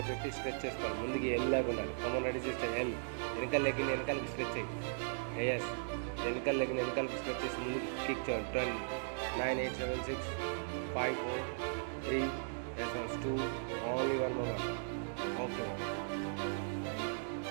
పెట్టి స్ట్రెచ్ చేసుకోవాలి. ముందుకి ఎల్ లాగా ఉండాలి. Come on ready sister. ఎల్ వెనకాల లెగ్ని వెనకాలకి స్ట్రెచ్ అయ్యి. ఎస్ వెనకాల లెగ్ని వెనకాలకి స్ట్రెచ్ చేసి ముందుకు కిక్ చేయండి. 10 9 8 7 6 5 4 3 yes 2 only one moment. Okay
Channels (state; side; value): silent; left; digital silence